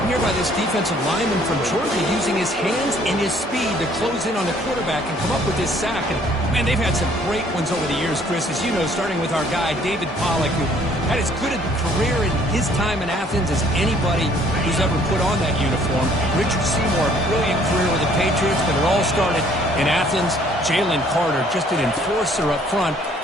here by this defensive lineman from Georgia using his hands and his speed to close in on the quarterback and come up with this sack. And, man, they've had some great ones over the years, Chris, as you know, starting with our guy, David Pollack, who had as good a career in his time in Athens as anybody who's ever put on that uniform. Richard Seymour, brilliant career with the Patriots, but it all started in Athens. Jalen Carter, just an enforcer up front.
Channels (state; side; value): normal; both; correlation 0.60